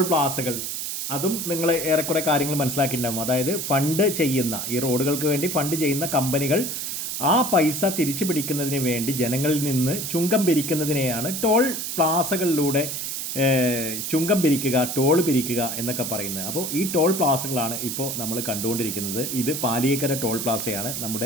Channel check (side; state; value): right; noise; hiss, 4 dB below the sound